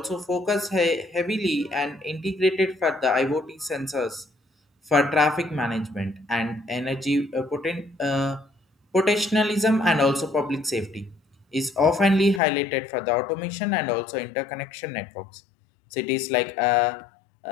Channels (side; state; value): right; drops out; at 12.4 s